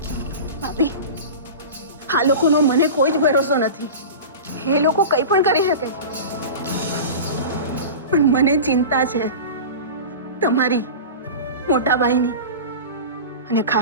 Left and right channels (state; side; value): inverted; both; correlation -0.31